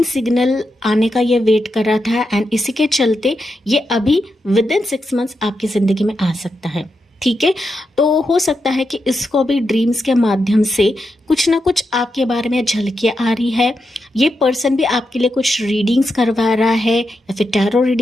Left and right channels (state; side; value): normal; both; correlation 0.86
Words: सिग्नल आने का ये वेट कर रहा था, एंड इसी के चलते ये अभी विदिन 6 मंथ्स आपकी ज़िंदगी में आ सकता है। ठीक है। तो हो सकता है कि इसको भी ड्रीम्स के माध्यम से कुछ ना कुछ आपके बारे में झलकियाँ आ रही है। ये पर्सन भी आपके लिए कुछ रीडिंग्स करवा रहा है, या फिर टैरो